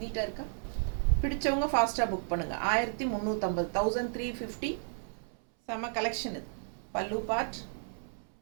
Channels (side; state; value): left; silent; 56 dB below the other